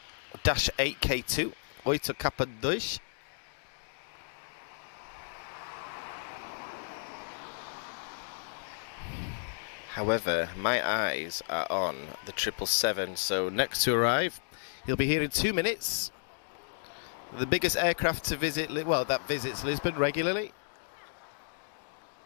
Dash 8K2. 8 Kappa 2. However, my eyes are on the 777, so next to arrive, he'll be here in 2 minutes. The biggest aircraft to visit, well, that visits Lisbon regularly.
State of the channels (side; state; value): right; silent; digital silence